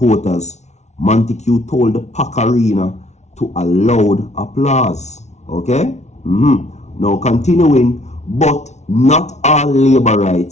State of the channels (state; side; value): late; right; 0.32 ms